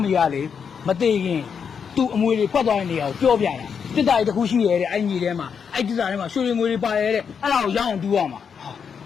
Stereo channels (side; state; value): right; quieter; 6.7 dB